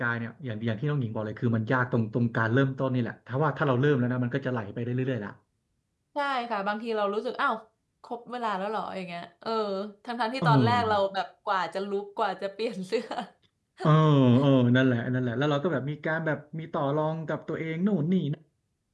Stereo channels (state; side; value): identical; both; correlation 1.00